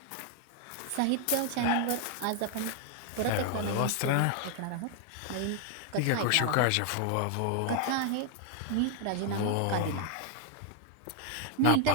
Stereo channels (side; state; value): both; different; correlation 0.00